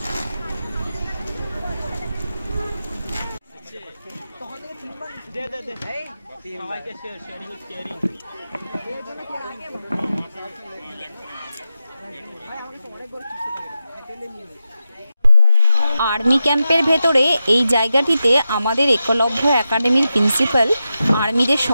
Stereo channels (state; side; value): inverted; both; correlation -0.90